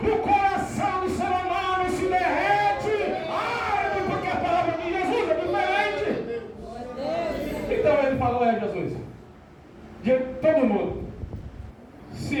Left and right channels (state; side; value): identical; both; correlation 1.00